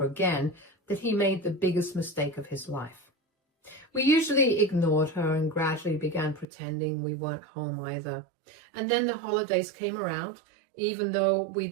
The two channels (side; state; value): left; drops out; at 6.5 s